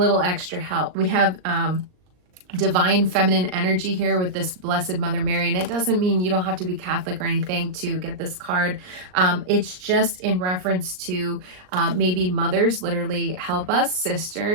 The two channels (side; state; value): left; late; 39 ms